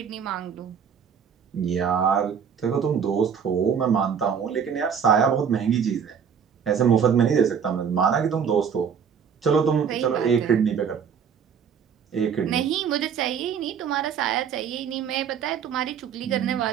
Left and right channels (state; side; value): quieter; left; 7.3 dB